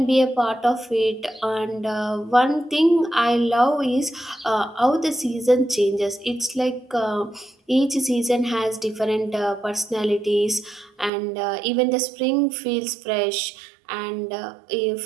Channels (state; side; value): drops out; left; at 11.1 s